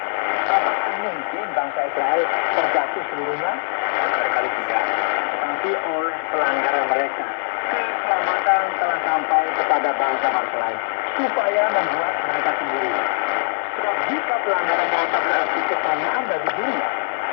Apakah mungkin bangsa Israel terjatuh seluruhnya? Barangkali tidak. Tetapi oleh pelanggaran mereka, keselamatan telah sampai kepada bangsa-bangsa lain, supaya membuat mereka sendiri. Sebab jika pelanggaran mereka berarti kekayaan bagi dunia,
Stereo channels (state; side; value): silent; right; 65 dB below the other